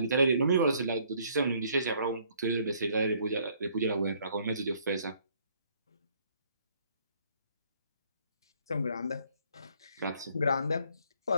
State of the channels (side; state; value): both; inverted; correlation -0.63